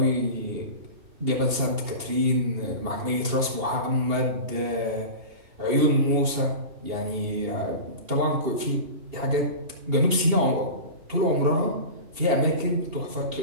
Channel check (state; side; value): late; left; 2.8 ms